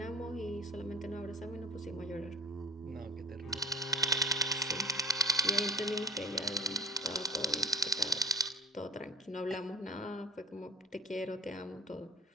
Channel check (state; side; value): normal; both; correlation 0.40